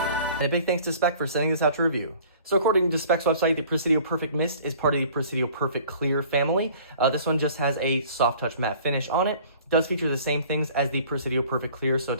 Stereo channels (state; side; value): inverted; both; correlation -0.50